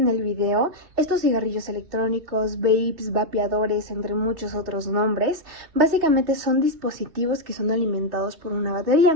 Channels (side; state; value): left; late; 3.3 ms